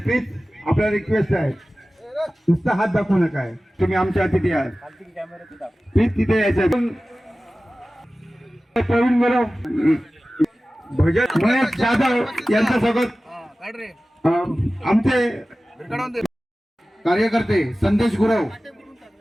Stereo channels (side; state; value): both; normal; correlation 0.96